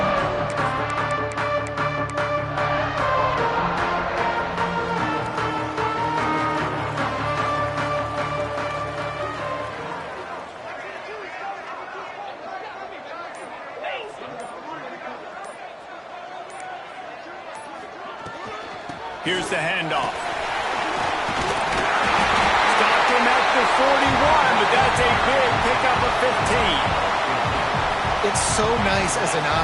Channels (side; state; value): both; identical; correlation 1.00